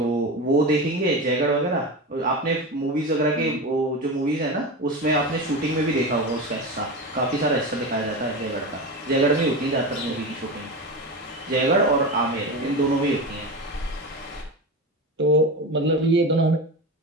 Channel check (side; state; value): both; normal; correlation 0.23